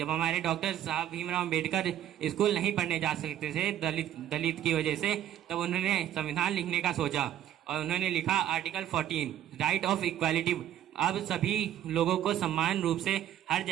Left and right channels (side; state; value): left; quieter; 11.4 dB